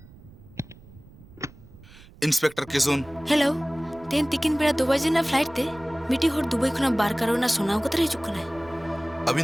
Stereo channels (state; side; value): noise; right; rumble, 22 dB below the sound